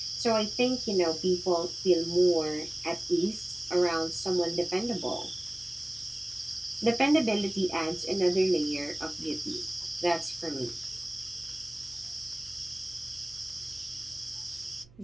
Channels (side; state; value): right; noise; hum, 25 dB below the sound